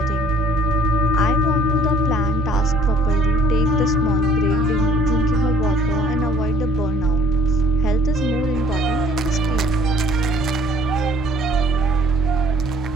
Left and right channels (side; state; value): both; normal; correlation 0.58